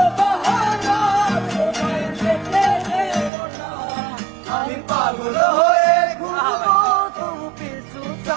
বাহানা, তোমায় যেতে দেব না। আমি পাগল হয়ে ঘুরবো, তবু পিছু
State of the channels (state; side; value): drops out; left; at 3.3 s